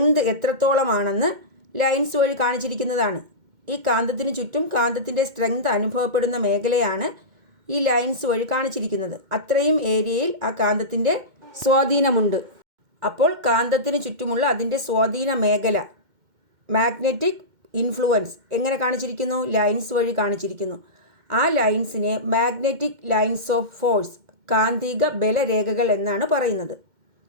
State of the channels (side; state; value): left; late; 2.1 ms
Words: എത്രത്തോളമാണെന്ന് ലൈൻസ് വഴി കാണിച്ചിരിക്കുന്നതാണ്. ഈ കാന്തത്തിന് ചുറ്റും കാന്തത്തിൻ്റെ സ്ട്രെങ്ത് അനുഭവപ്പെടുന്ന മേഖലയാണ് ഈ ലൈൻസ് വഴി കാണിച്ചിരിക്കുന്നത്. അത്രയും ഏരിയയിൽ ആ കാന്തത്തിൻ്റെ സ്വാധീനമുണ്ട്. അപ്പോൾ കാന്തത്തിന് ചുറ്റുമുള്ള അതിൻ്റെ സ്വാധീന മേഖല, മാഗ്നറ്റിക് ഇൻഫ്ലുവൻസ് എങ്ങനെ കാണിച്ചിരിക്കുന്നു? ലൈൻസ് വഴി കാണിച്ചിരിക്കുന്നു. ആ ലൈൻസിനെ മാഗ്നറ്റിക് ലൈൻസ് ഓഫ് ഫോഴ്സ്, കാന്തിക ബലരേഖകൾ എന്നാണ് പറയുന്നത്.